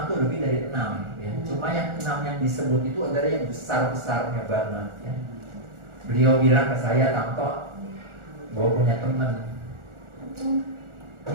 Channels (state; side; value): late; left; 1.4 ms